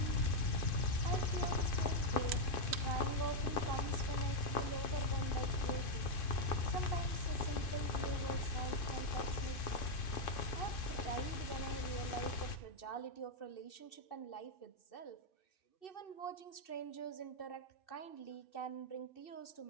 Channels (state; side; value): late; right; 2.5 ms